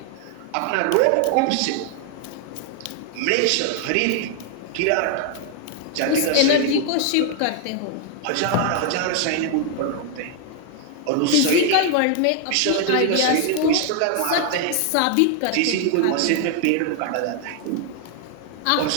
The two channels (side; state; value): both; different; correlation 0.00